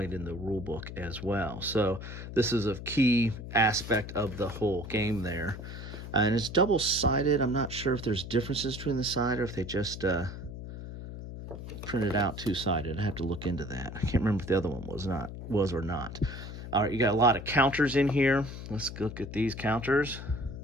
in the rule book as well. So this is a key aspect of the whole game there. And it's double-sided. I'm not sure if there's differences between the side or if they just printed out two-sided. I have to look into that. I can't remember if the other one was or not. All right, you got a lot of counters in here. Let's look at these counters.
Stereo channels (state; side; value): noise; left; hum, 10 dB below the sound